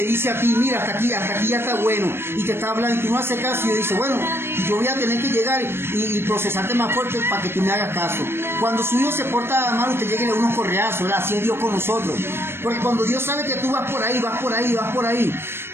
dice a ti, mira, hasta aquí ya está bueno, y te está hablando y tú no haces caso, y dice, bueno, yo voy a tener que llegar y procesarte más fuerte para que tú me hagas caso. Cuando su hijo se porta mal, usted llegue a unos correazos, ¿verdad? Así es Dios con nosotros. Porque cuando Dios sabe que tú vas por ahí,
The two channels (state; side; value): late; left; 0.12 ms